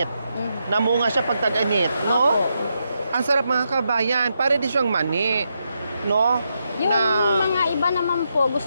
Namunga siya pag tag-init, no? Opo. Ang sarap mga kabayan. Pare di siyang mani, no? Yung na... mga iba naman po,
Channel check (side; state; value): both; inverted; correlation -0.83